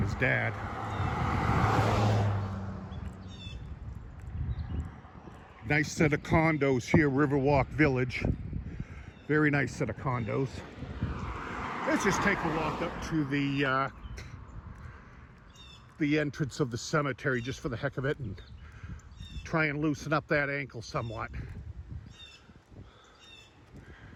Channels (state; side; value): identical; both; correlation 1.00